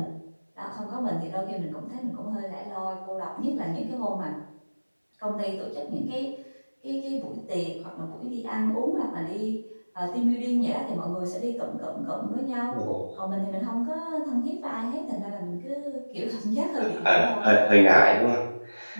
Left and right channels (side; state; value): both; inverted; correlation -1.00